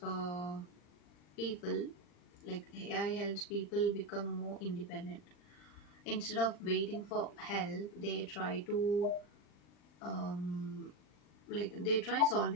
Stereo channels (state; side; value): late; right; 40 ms